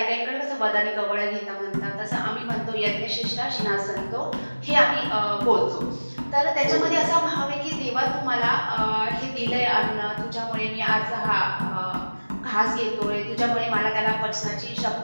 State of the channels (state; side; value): inverted; both; correlation -1.00